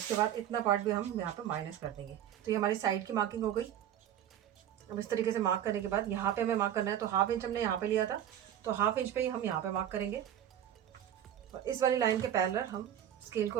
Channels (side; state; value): left; quieter; 10.5 dB